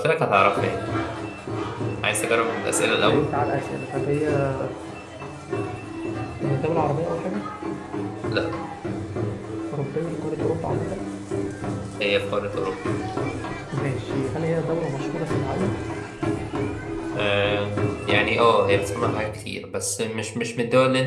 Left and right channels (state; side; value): identical; both; correlation 1.00